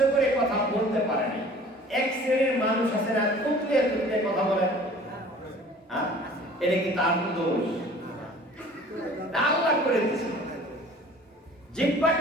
করে কথা বলতে পারেনি। এক শ্রেণীর মানুষ আছে না, তুতলিয়ে তুতলিয়ে কথা বলে, এটা কি তার দোষ? আল্লাহ করে দিয়েছে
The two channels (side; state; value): both; normal; correlation 0.48